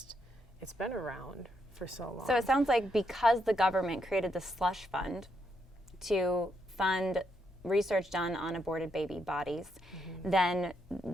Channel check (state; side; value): normal; both; correlation 0.78